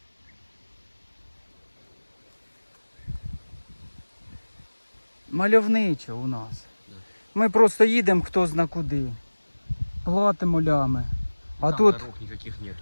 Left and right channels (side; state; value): both; inverted; correlation -1.00